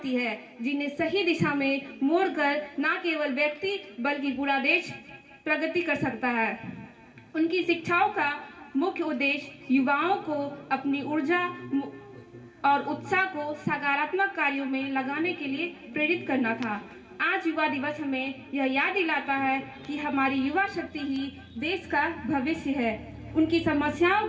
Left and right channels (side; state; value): both; identical; correlation 1.00